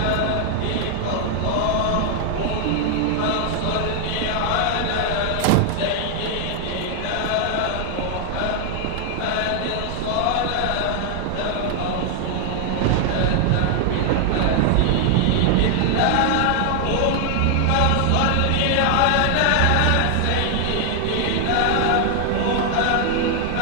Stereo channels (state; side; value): different; both; correlation 0.00